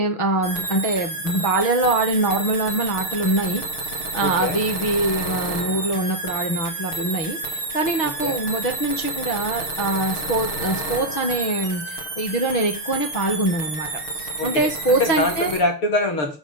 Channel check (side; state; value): right; late; 6.4 ms